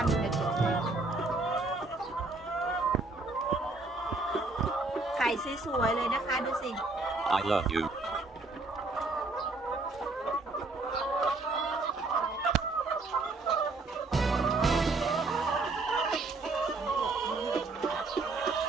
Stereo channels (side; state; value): left; quieter; 3.4 dB